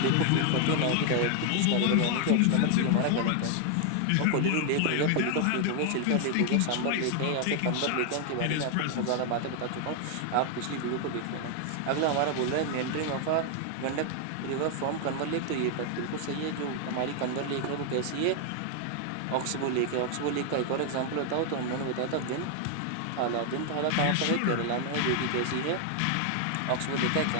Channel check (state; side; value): different; both; correlation 0.00